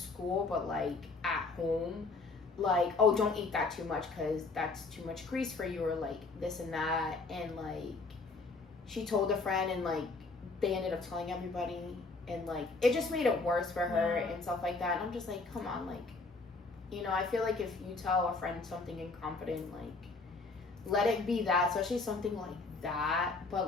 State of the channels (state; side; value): quieter; right; 3.8 dB